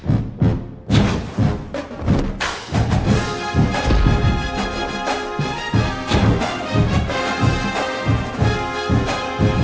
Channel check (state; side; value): identical; both; correlation 1.00